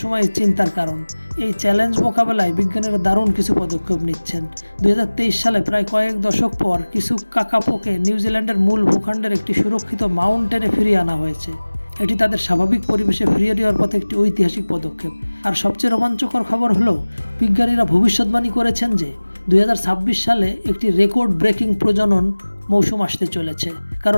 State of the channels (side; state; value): both; inverted; correlation -1.00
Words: চিন্তার কারণ। এই চ্যালেঞ্জ মোকাবেলায় বিজ্ঞানীরা দারুণ কিছু পদক্ষেপ নিচ্ছেন। 2023 সালে প্রায় কয়েক দশক পর কিছু কাকাপোকে নিউজিল্যান্ডের মূল ভূখণ্ডের একটি সুরক্ষিত মাউন্টেনে ফিরিয়ে আনা হয়েছে। এটি তাদের স্বাভাবিক পরিবেশে ফিরিয়ে দেওয়ার পথে একটি ঐতিহাসিক পদক্ষেপ। আর সবচেয়ে রোমাঞ্চকর খবর হলো, বিজ্ঞানীরা ভবিষ্যৎবাণী করেছেন যে 2026 সালে একটি রেকর্ড ব্রেকিং প্রজনন মৌসুম আসতে চলেছে,